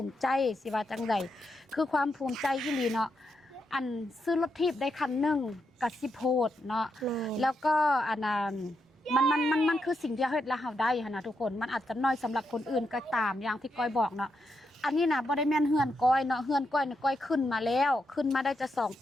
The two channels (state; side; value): normal; both; correlation 0.83